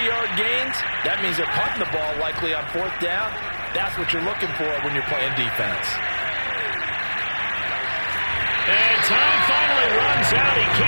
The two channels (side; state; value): both; inverted; correlation -1.00